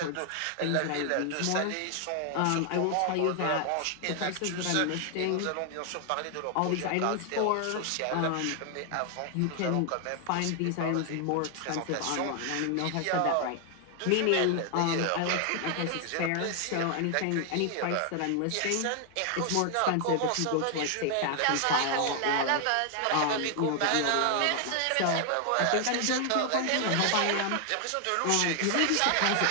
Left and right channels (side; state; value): both; different; correlation 0.00